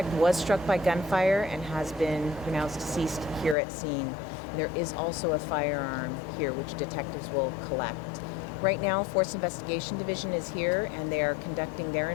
was struck by gunfire and has been pronounced deceased here at scene. There is also a firearm here, which detectives will collect. Right now, Force Investigation Division is here, and they are conducting their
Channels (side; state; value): right; drops out; at 3.6 s